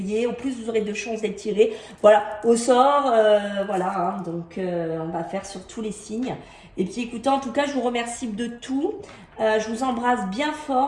au plus vous aurez de chances d'être tirés. Voilà, au sort, voilà, donc on va faire sur tous les signes. Et puis écoutez, en tout cas, je vous remercie de tout. Je vous embrasse bien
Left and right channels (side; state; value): both; identical; correlation 1.00